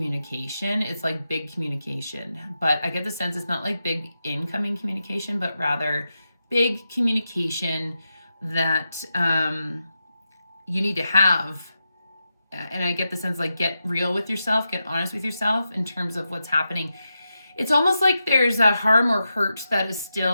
It's like big communication, but I get the sense it's not like big incoming communication, but rather big communication that you need to have. And I get the sense like get real with yourself, get honest with yourself in terms of what's happening. It's almost like there's a harm or hurt that is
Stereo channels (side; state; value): both; inverted; correlation -0.88